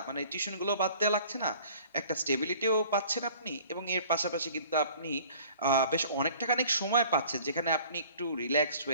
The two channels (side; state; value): both; inverted; correlation -0.51